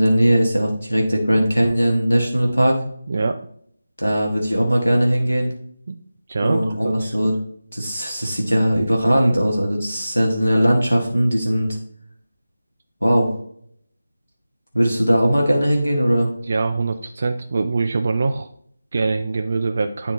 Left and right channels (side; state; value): both; inverted; correlation -0.95